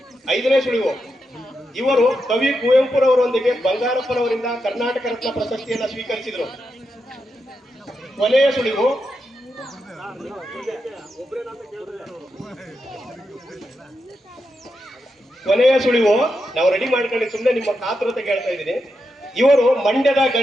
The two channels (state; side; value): normal; both; correlation 0.86